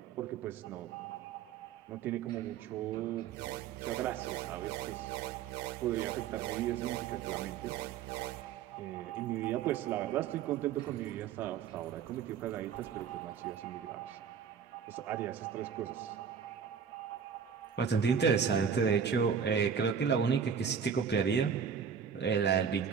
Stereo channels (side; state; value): left; quieter; 7.1 dB